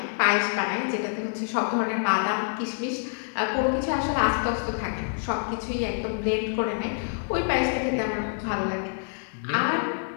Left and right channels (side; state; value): right; silent; digital silence